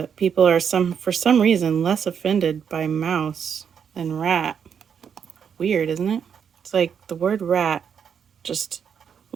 people are for some reason less offended by mouse than rat. Weird, isn't it? It's like the word rat just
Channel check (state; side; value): quieter; left; 7.4 dB